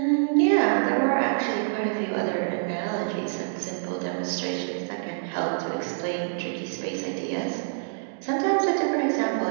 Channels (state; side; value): silent; left; digital silence